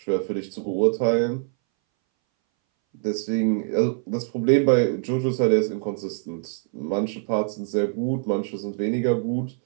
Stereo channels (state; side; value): silent; left; 61 dB below the other